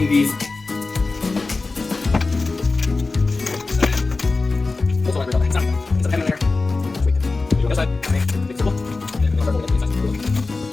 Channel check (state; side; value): quieter; right; 3.7 dB